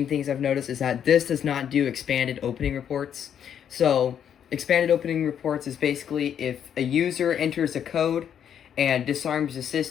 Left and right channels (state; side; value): quieter; right; 8.9 dB